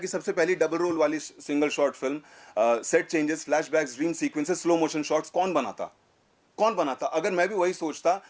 सबसे पहली डबल रोल वाली single short film, set changes, flashbacks, dream sequences, slow motion shots कौन बनाता? अगर मैं भी वही सोचता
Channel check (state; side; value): identical; both; correlation 1.00